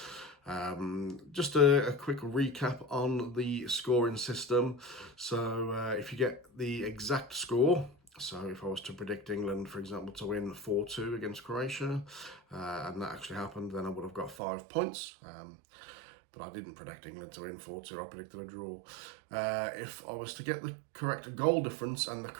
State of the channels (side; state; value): left; drops out; at 14.4 s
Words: Just a quick recap on the scoring system. So if you get the exact score, so if I was to predict England, for example, to win 4-2 against Croatia, and that actually happened, then I would have got 5 points. But I didn't predict England to win 4-2, I predicted a draw. If I was to get the correct goal difference and the